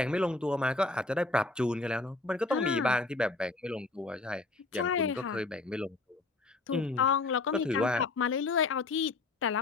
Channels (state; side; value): quieter; right; 3.4 dB